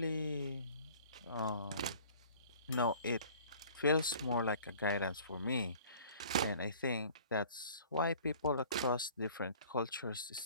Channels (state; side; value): inverted; both; correlation -0.49